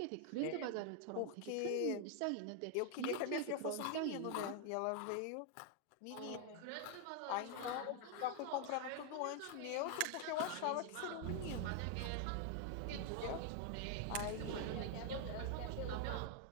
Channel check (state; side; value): different; both; correlation 0.00